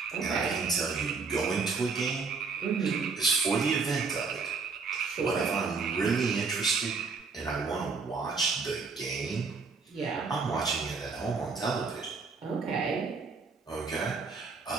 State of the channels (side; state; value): left; quieter; 4.7 dB